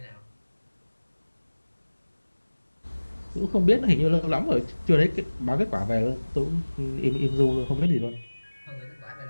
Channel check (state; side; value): inverted; both; correlation -1.00